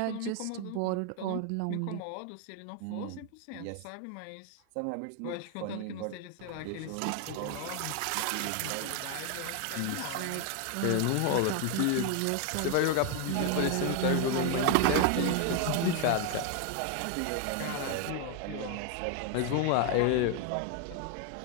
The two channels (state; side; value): different; both; correlation 0.01